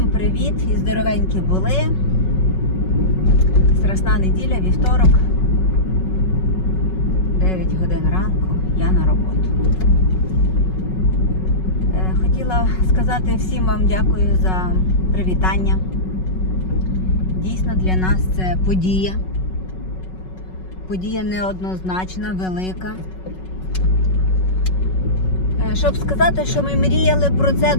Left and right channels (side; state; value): right; late; 5.4 ms